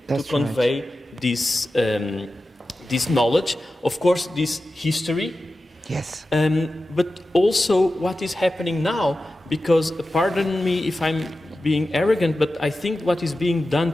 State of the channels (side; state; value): both; normal; correlation 0.93